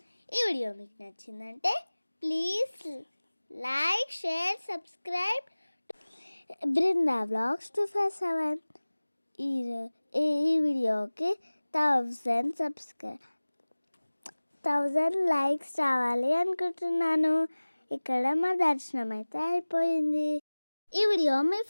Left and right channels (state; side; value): inverted; both; correlation -1.00